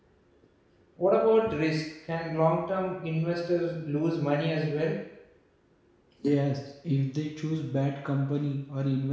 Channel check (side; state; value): both; identical; correlation 1.00